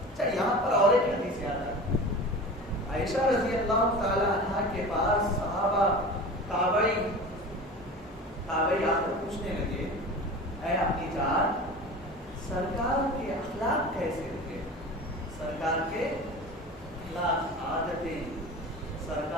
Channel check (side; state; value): both; normal; correlation 0.34